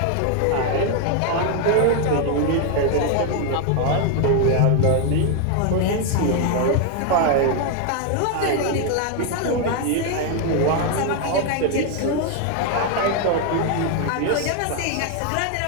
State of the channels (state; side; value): different; both; correlation 0.01